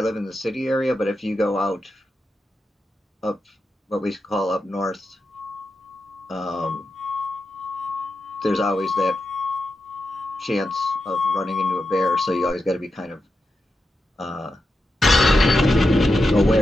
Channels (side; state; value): both; normal; correlation 0.89